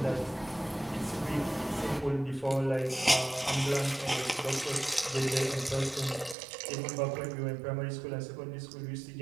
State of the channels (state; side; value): drops out; left; at 6.4 s